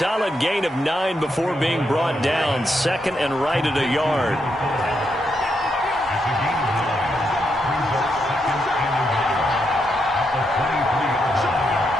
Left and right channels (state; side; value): normal; both; correlation 0.81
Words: gain of 9 before being brought down. Second and right at a yard.